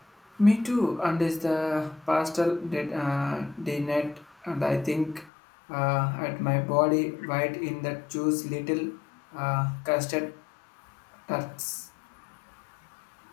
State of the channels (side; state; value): right; drops out; at 5.3 s